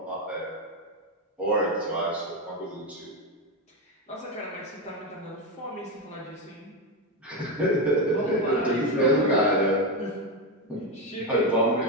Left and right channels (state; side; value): normal; both; correlation 0.11